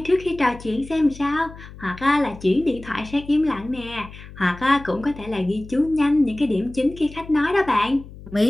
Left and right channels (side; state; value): left; noise; hum, 17 dB below the sound